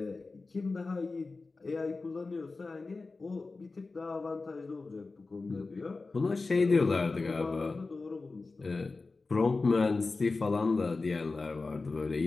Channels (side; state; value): right; quieter; 3.8 dB